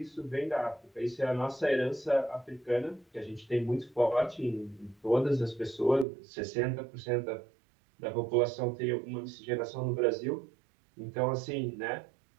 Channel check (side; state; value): left; drops out; at 6.1 s